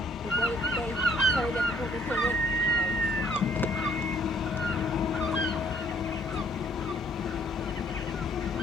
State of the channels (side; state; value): both; normal; correlation 0.63